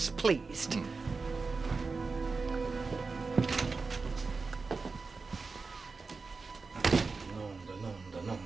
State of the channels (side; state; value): left; quieter; 4.3 dB